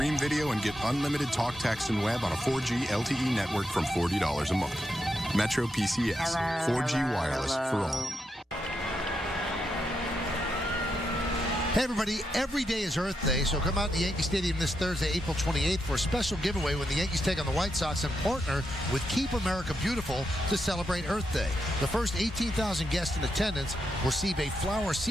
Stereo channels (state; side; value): normal; both; correlation 0.83